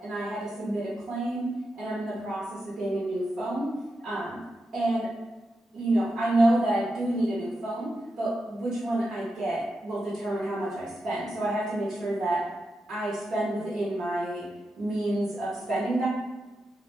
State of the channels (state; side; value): normal; both; correlation 0.87